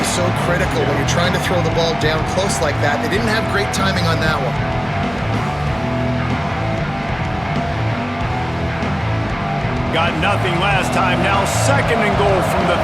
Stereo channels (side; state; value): left; noise; hum, 19 dB below the sound